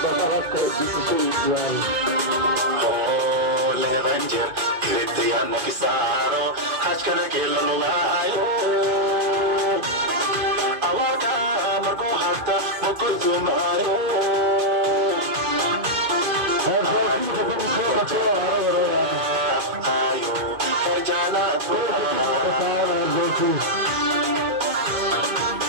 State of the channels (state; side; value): late; left; 2.2 ms